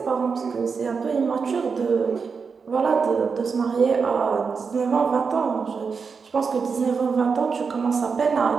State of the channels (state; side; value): quieter; left; 5.4 dB